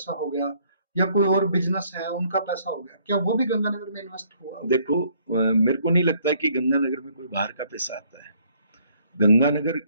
हो गया या कोई और बिजनेस है उनका पैसा हो गया, क्या वो भी गंगानगर में इन्वेस्ट हुआ? देखो, मेरे को नहीं लगता है कि गंगानगर में कोई बाहर का पैसा आता है। गंगानगर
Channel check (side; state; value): both; inverted; correlation -0.64